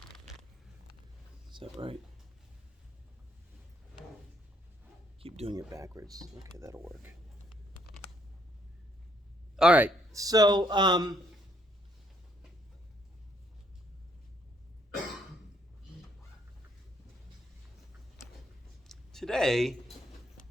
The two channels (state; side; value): normal; both; correlation 0.70